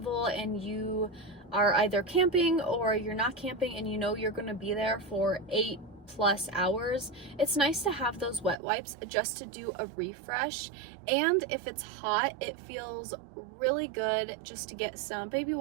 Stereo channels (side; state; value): left; drops out; at 8.6 s